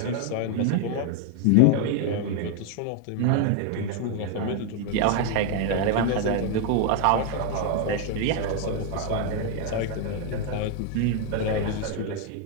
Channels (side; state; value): both; different; correlation 0.01